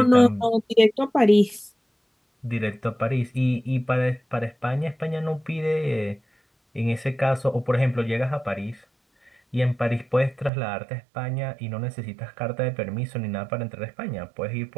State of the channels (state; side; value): drops out; left; at 10.5 s